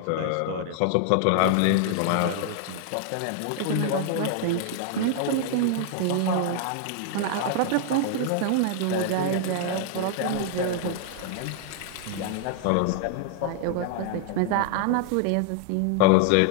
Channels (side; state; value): both; different; correlation 0.00